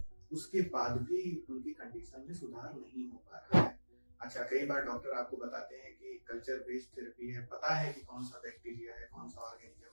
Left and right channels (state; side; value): inverted; both; correlation -1.00